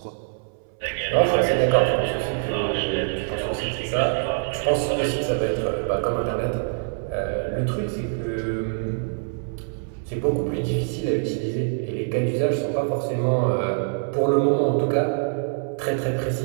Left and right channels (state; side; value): silent; left; 61 dB below the other